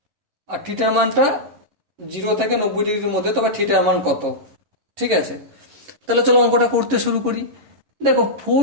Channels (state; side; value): late; left; 11 ms